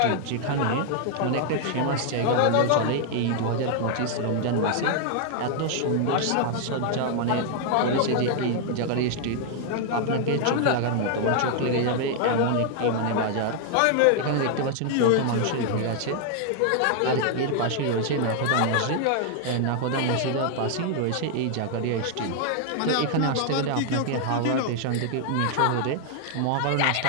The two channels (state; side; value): different; both; correlation 0.00